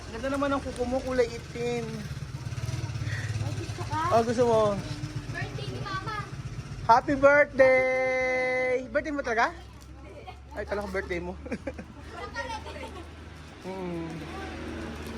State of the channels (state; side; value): identical; both; correlation 1.00